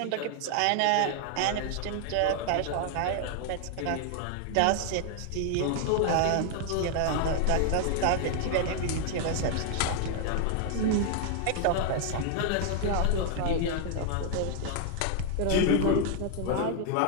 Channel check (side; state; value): both; different; correlation 0.00